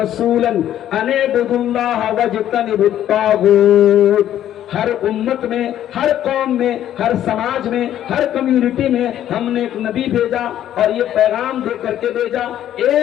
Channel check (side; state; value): right; quieter; 11.5 dB